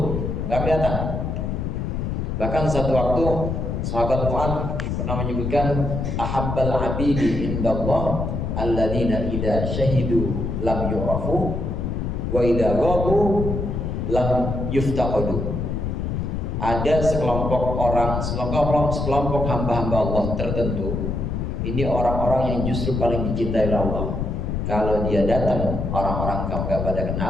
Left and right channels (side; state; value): left; noise; rumble, 2 dB below the sound